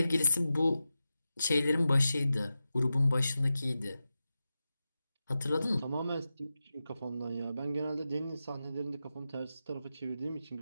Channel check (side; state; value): both; inverted; correlation -0.92